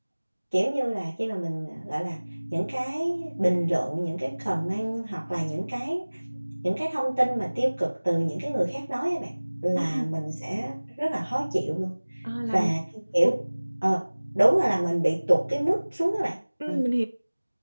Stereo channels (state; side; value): inverted; both; correlation -1.00